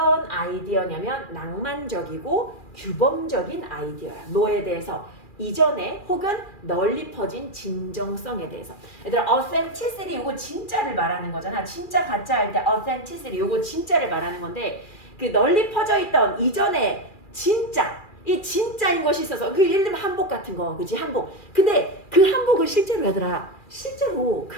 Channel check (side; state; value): right; late; 2.4 ms